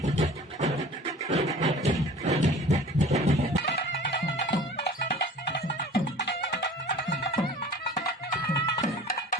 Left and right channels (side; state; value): both; normal; correlation 0.44